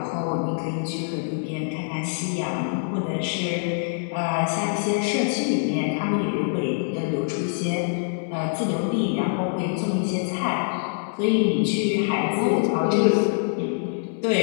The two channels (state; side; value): silent; right; digital silence